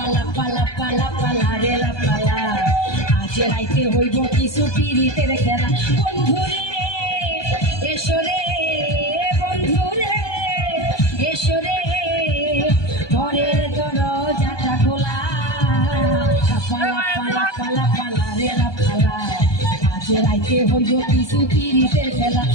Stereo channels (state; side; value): late; right; 1.2 ms